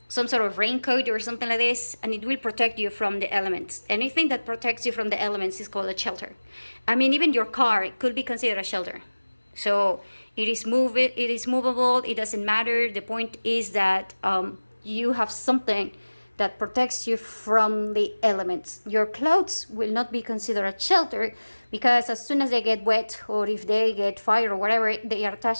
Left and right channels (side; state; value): both; inverted; correlation -1.00